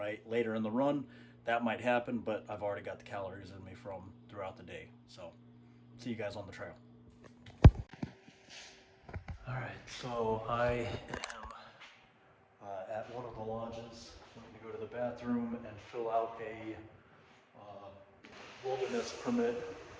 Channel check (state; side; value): identical; both; correlation 1.00